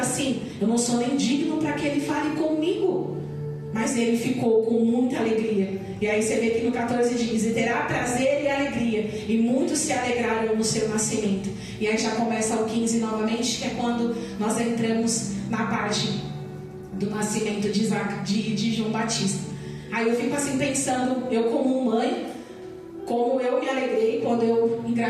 eu não sou nem digno para que ele fale comigo. Mas ele ficou com muita alegria. E aí você vê que no 14 diz: e terá prazer e alegria, e muitos se alegraram no seu nascimento. E aí já começa o 15 novamente, que é quando nós entramos na parte do nascimento de João Batista. Aí eu fico assim pensando, eu como mãe, como eu me alegrei quando eu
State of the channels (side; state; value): both; identical; correlation 1.00